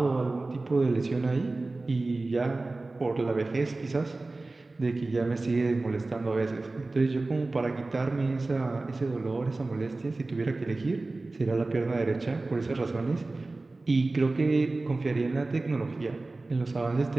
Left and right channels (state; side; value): quieter; left; 3.2 dB